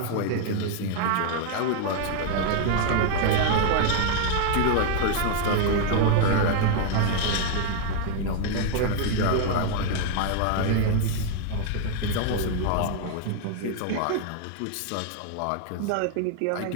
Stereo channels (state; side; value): different; both; correlation 0.00